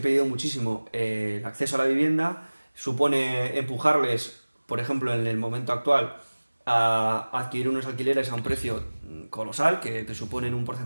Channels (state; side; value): inverted; both; correlation -1.00